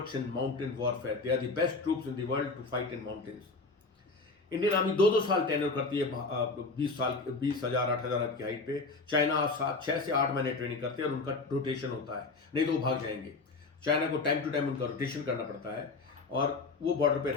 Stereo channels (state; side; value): quieter; right; 3.8 dB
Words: in mountain warfare, they are the best troops in the world to fight in mountains. Indian army 2-2 साल tenure करती है, 20,000 8,000 की height पे। China 6 से 8 महीने ट्रेनिंग करते हैं और उनका रोटेशन होता है, नहीं तो वो भाग जाएंगे। चाइना को टाइम टू टाइम उनका रोटेशन करना पड़ता है और वो बॉर्डर पे